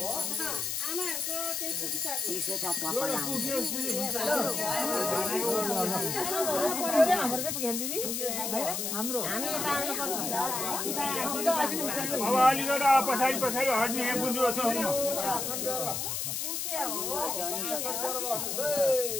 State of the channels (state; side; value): noise; left; hiss, 2 dB below the sound